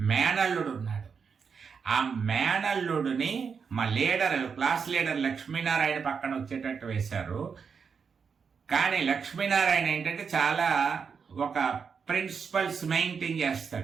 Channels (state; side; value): quieter; left; 6.0 dB